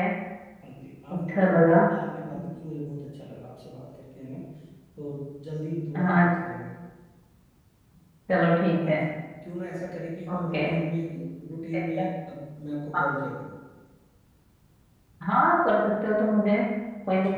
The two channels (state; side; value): identical; both; correlation 1.00